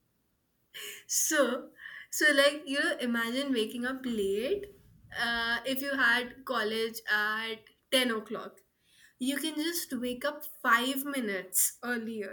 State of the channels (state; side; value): identical; both; correlation 1.00